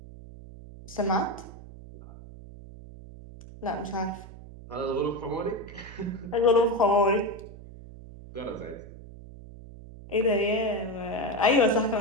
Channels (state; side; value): noise; right; hum, 16 dB below the sound